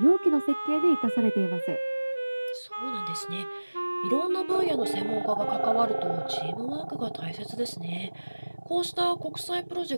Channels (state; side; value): inverted; both; correlation -1.00